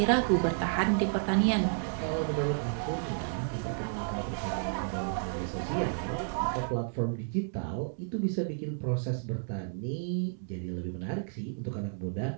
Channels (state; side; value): silent; left; digital silence